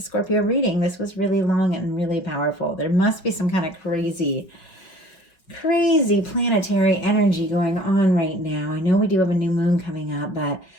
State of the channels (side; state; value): right; late; 5.5 ms